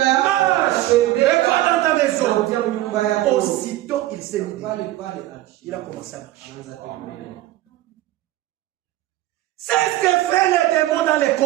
et va dans ta maison. Aussitôt il s'est mis. Il a commencé à marcher. C'est ce que fait les démons dans les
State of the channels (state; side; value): quieter; left; 15.8 dB